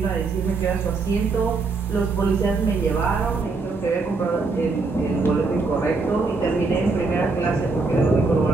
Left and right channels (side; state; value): left; quieter; 4.0 dB